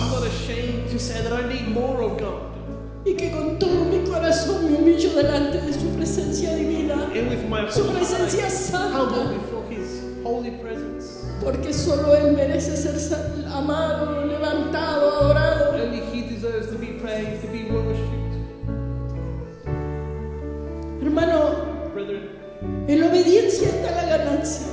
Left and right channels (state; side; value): identical; both; correlation 1.00